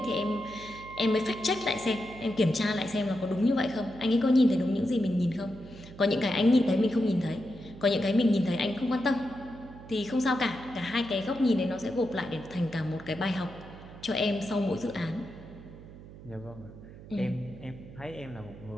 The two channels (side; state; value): right; noise; hum, 17 dB below the sound